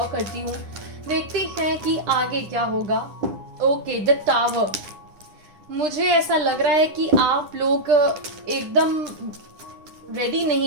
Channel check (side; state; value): left; late; 9.9 ms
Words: करती हूँ, देखते हैं कि आगे क्या होगा। Okay, the tower. मुझे ऐसा लग रहा है कि आप लोग एकदम रेडी